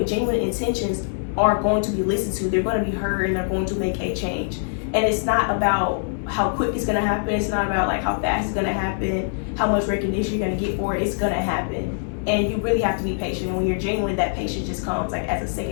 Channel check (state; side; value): silent; right; digital silence